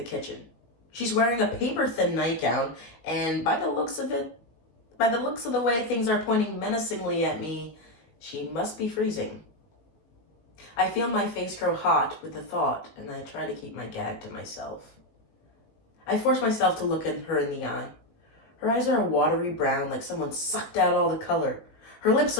kitchen. She's wearing a paper-thin nightgown, and by the looks of the way things are pointing menacingly at me, she must be freezing. I feel my face grow hot with the thought, and I try to keep my gag to myself. I force myself to look at her in the eye. Her eyes are a watery brown, like someone sucked out all the color. Her lips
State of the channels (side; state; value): right; late; 19 ms